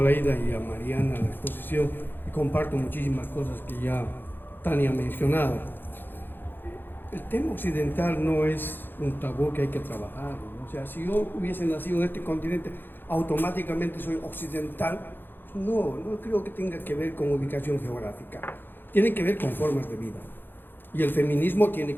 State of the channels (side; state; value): right; late; 0.097 ms